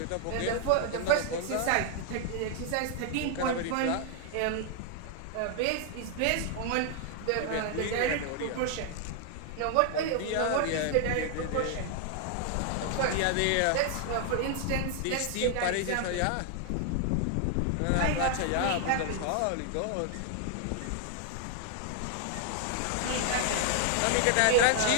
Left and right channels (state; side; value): different; both; correlation 0.00